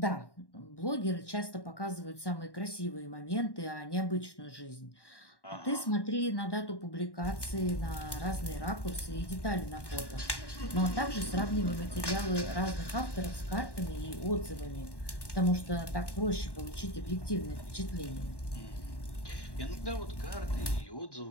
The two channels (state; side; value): late; right; 1.1 ms